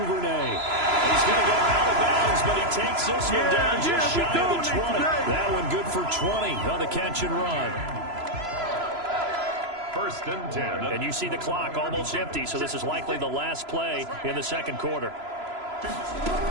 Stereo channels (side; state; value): left; late; 3.0 ms